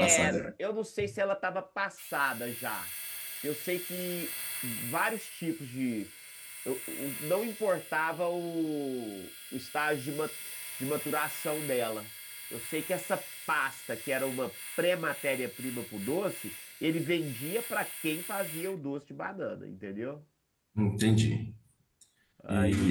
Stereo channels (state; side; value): identical; both; correlation 1.00